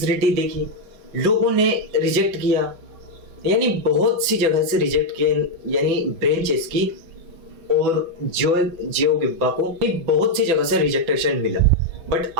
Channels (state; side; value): late; left; 6.2 ms